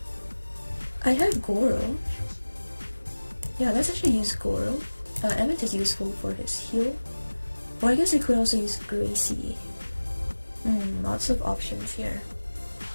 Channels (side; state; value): both; inverted; correlation -1.00